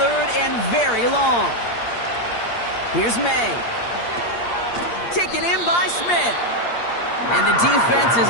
and very long. Here's May. Taken in by Smith. And the defense is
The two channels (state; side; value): late; right; 8.6 ms